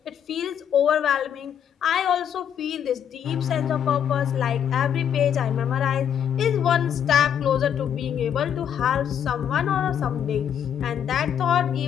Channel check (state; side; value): quieter; right; 8.9 dB